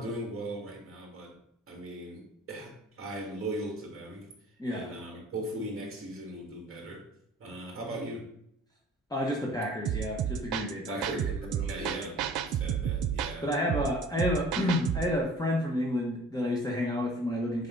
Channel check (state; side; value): normal; both; correlation 0.49